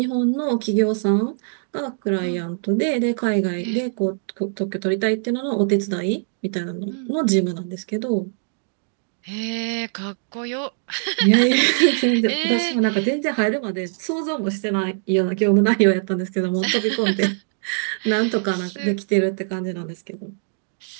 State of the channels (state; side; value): silent; left; digital silence